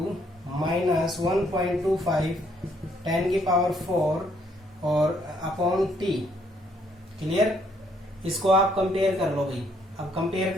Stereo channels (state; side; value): normal; both; correlation 0.68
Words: minus 1.25 10 की पावर 4 और अपॉन टी, क्लियर। इसको आप कंपेयर कर लो भाई। अब कंपेयर